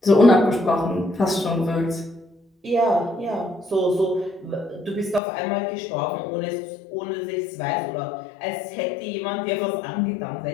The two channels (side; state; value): right; drops out; at 5.2 s